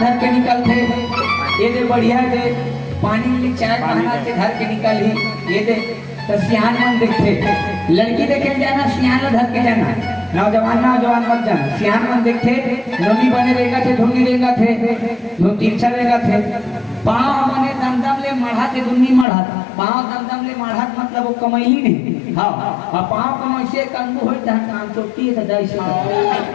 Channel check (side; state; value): right; drops out; at 19.2 s